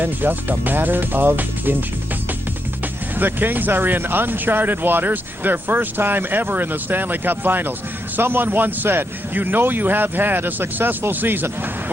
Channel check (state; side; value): normal; both; correlation 0.82